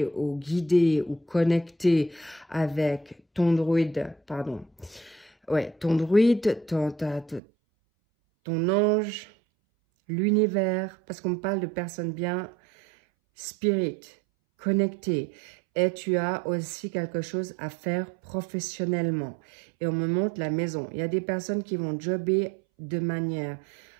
ou guidé ou connecté avec ton druide, pardon. Ouais, ton druide, ton ange, l'univers, parce qu'on me parle de personnes bien spirit, connectées. Et tu as aussi quelque chose à faire professionnellement. Et on me montre la maison. Il y a des personnes qui vont jobber de manière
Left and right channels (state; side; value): drops out; left; at 7.4 s